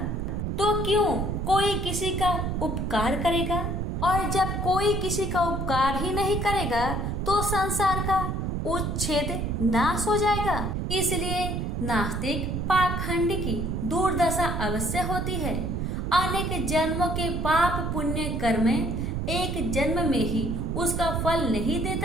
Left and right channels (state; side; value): noise; right; rumble, 1 dB below the sound